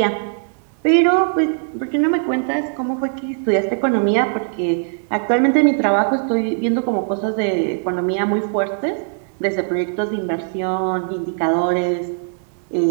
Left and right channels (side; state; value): left; silent; digital silence